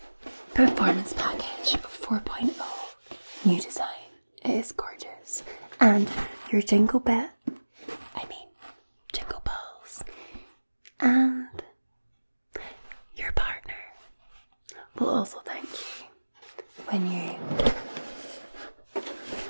performance package 4.0. New design. It is gorgeous. And your jingle balls, and your partner will also thank you when you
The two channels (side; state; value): both; inverted; correlation -1.00